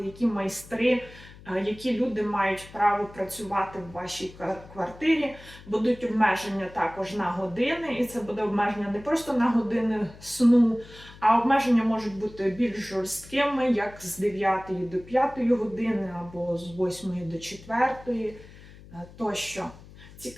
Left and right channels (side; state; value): left; noise; hum, 20 dB below the sound